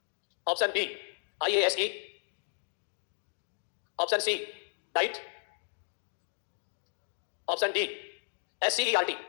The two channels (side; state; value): right; silent; digital silence